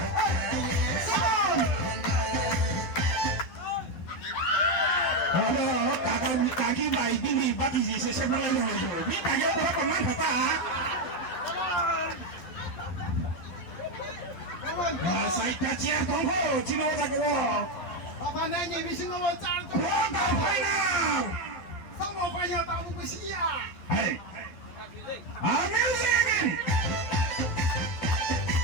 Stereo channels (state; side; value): late; right; 11 ms